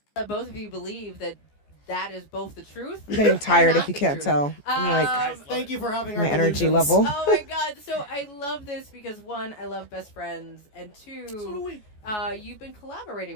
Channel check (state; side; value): late; right; 14 ms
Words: Both of you believe that is both the truth. I'm getting tired if you can't tell. I'm like, thank you for having my our energy delusions. level. Oh my god! So I love this because one, I love best friends, and two, you've been